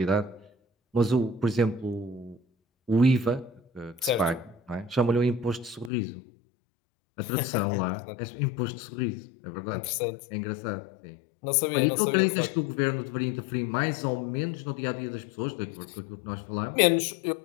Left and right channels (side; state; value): right; drops out; at 5.9 s